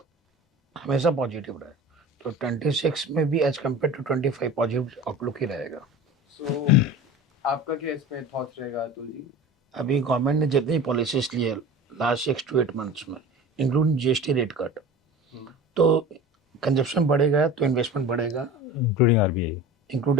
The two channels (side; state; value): both; normal; correlation 0.36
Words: हमेशा positive रहा है, तो 26 में भी as compare to 25 positive outlook ही रहेगा। So आपका क्या इसमें थॉट्स रहेगा अतुल जी? अभी गवर्नमेंट ने जितनी पॉलिसीज ली है लास्ट 6 to 8 मंथ्स में, इंक्लूडिंग जीएसटी रेट कट, तो कंजप्शन बढ़ेगा तो इन्वेस्टमेंट बढ़ेगा,